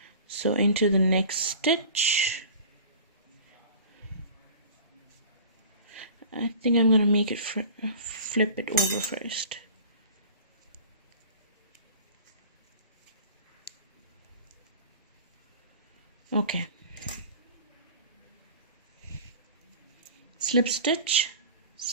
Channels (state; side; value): inverted; both; correlation -0.42